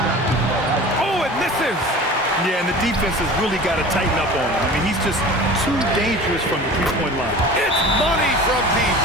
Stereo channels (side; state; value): both; normal; correlation 0.39